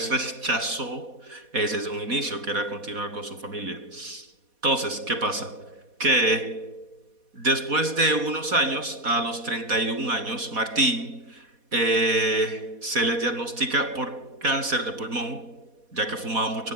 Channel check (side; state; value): left; late; 4.1 ms